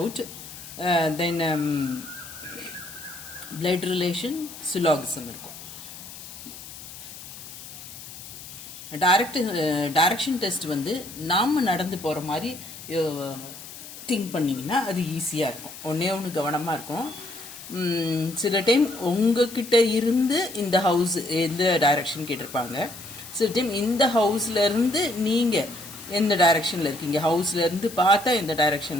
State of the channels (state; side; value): noise; left; hiss, 14 dB below the sound